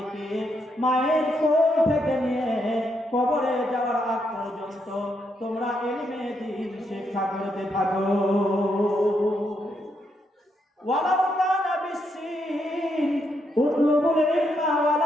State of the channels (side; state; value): both; normal; correlation 0.78